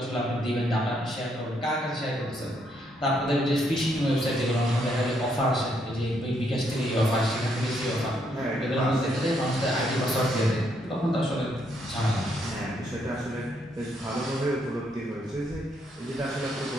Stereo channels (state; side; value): normal; both; correlation 0.74